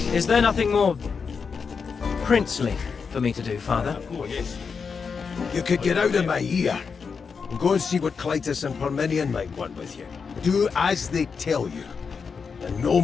Is there nothing more princely for me to do, Father? You could get out of my ear and go and see what Clytus and Parmenion might want with you. Do as they tell you, and no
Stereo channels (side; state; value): right; quieter; 5.6 dB